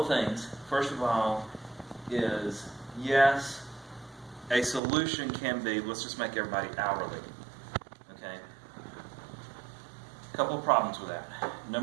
of things. First of all is, yes, a solution can be, let's just make everybody hourly. Okay? A couple of problems with that.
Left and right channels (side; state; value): left; drops out; at 4.8 s